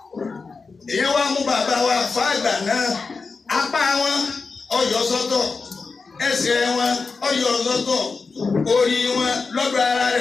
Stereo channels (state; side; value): quieter; right; 4.5 dB